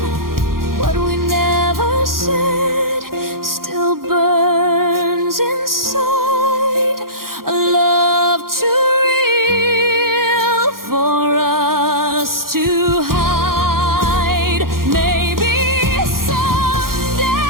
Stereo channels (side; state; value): left; late; 0.92 ms